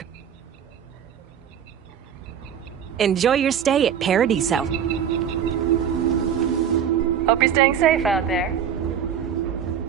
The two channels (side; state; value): left; quieter; 8.5 dB